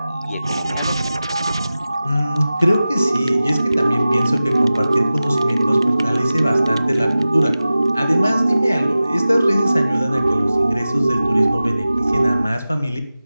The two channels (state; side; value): inverted; both; correlation -0.95